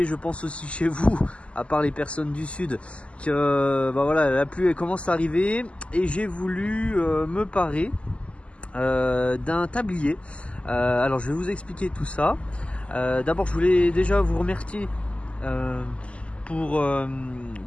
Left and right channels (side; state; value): right; late; 0.058 ms